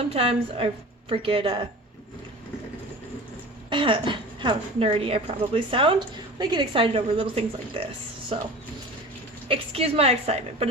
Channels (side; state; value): both; normal; correlation 0.37